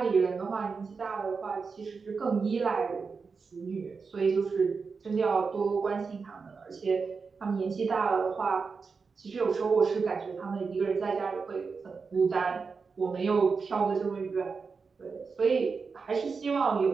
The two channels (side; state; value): left; quieter; 5.0 dB